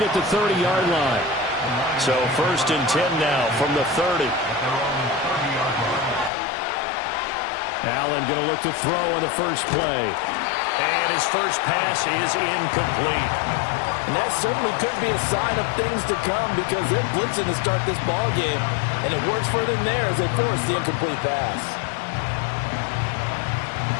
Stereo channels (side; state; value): right; drops out; at 6.3 s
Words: at the 30-yard line. So 1st and 10 now from the 30. Allen going to look to throw on the first play. And his first pass is incomplete. And that certainly could be a sign of things to come because they're blitzing to start this ball game. And it works for them there as they force the incomplete pass.